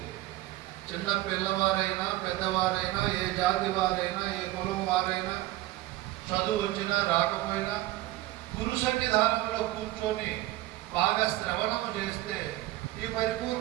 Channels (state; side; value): quieter; left; 16.8 dB